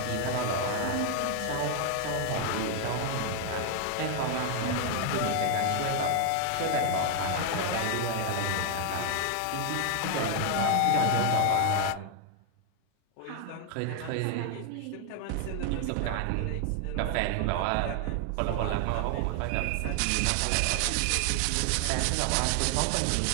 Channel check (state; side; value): different; both; correlation 0.00